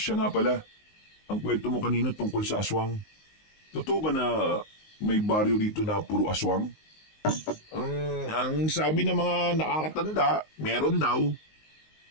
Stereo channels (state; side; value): late; right; 19 ms